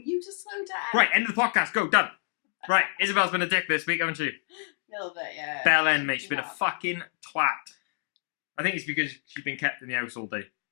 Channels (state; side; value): silent; right; digital silence